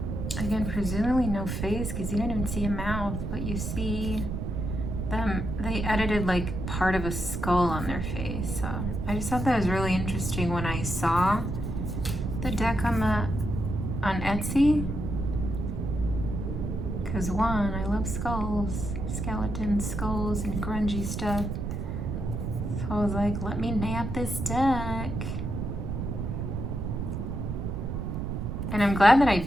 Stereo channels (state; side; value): noise; right; rumble, 3 dB below the sound